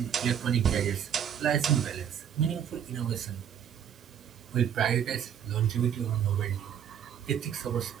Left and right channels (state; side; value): quieter; left; 8.9 dB